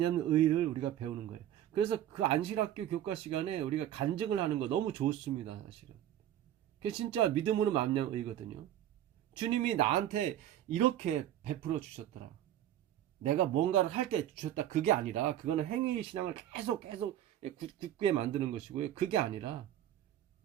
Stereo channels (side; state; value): left; quieter; 11.8 dB